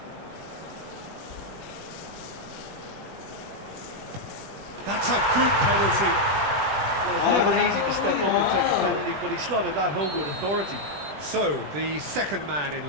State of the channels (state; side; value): late; left; 20 ms